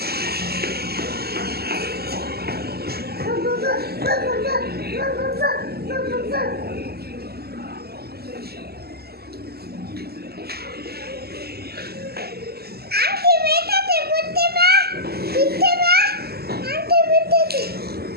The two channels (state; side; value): late; left; 0.46 ms